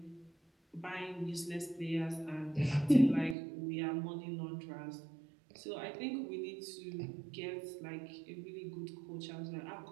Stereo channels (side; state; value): left; drops out; at 3.4 s